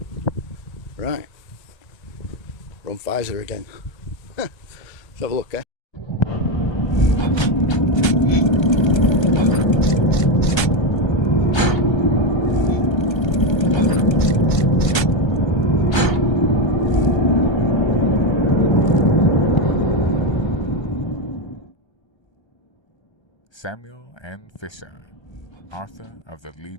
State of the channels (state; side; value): late; right; 1.3 ms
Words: Right, we're on Pfizer again. Let's have a look, eh? Samuel N. Fisher, author of the